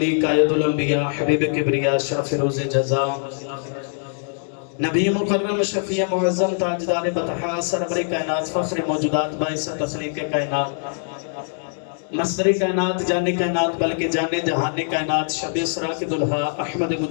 قائد الانبیاء حبیب کبریا شرف روز جزا نبی مکرم شفیع معظم تاجدار بطحا سرور کائنات فخر موجودات باعث تخلیق کائنات مصدر کائنات جان کائنات بلکہ جان جہان کائنات شب اسراء کے دلہا احمد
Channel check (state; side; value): silent; right; digital silence